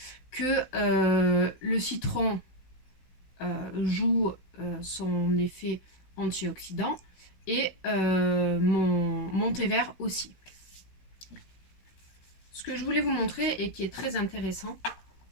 que le citron joue son effet antioxydant et mon thé vert aussi. Ce que je voulais vous montrer et qui est très intéressant,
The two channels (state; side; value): late; right; 16 ms